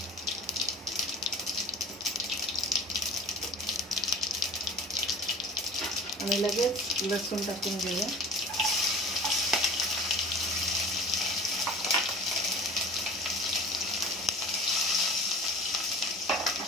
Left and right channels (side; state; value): both; normal; correlation 0.40